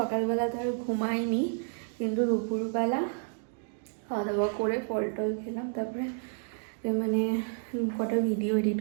তো আর ঘুমাইনি, কিন্তু দুপুরবেলা খাওয়া দাওয়া করে ফল টল খেলাম, তারপরে মানে কটা ভিডিও এডিট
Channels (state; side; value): silent; left; digital silence